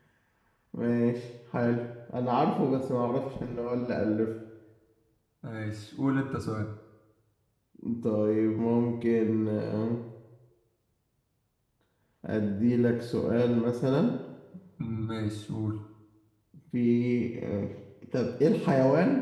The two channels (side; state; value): both; identical; correlation 1.00